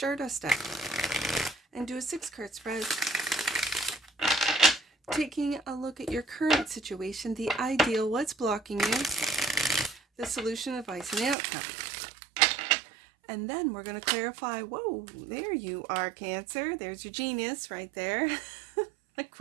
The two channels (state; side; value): drops out; left; at 11.4 s